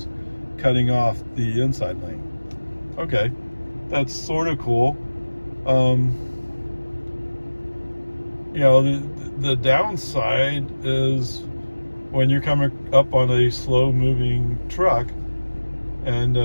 cutting off the inside lane. Okay, that's sort of cool. The downside is when you're coming up on a slow moving truck and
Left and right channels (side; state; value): both; inverted; correlation -1.00